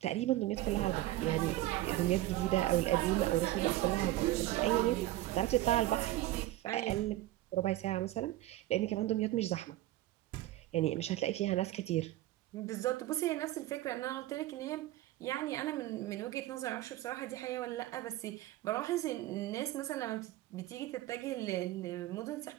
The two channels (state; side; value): quieter; left; 15.8 dB